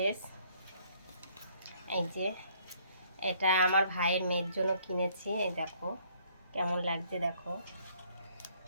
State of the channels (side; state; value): both; inverted; correlation -0.63